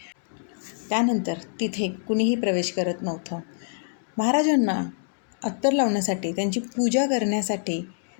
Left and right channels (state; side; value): silent; right; digital silence